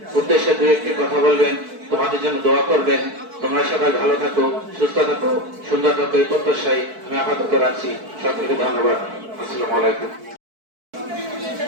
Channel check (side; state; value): left; late; 4.6 ms